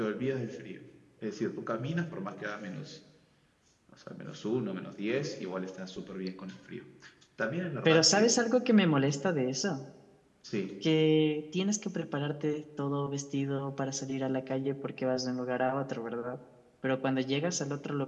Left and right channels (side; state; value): both; identical; correlation 1.00